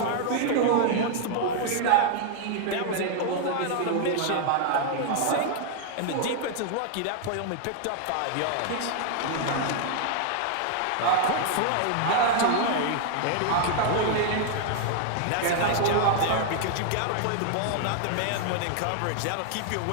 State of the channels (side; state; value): both; different; correlation 0.00